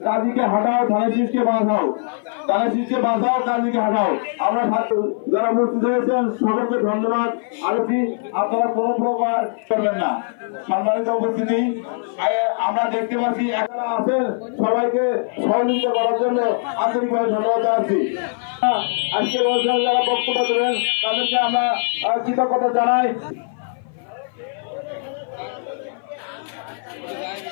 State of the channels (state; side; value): silent; right; 57 dB below the other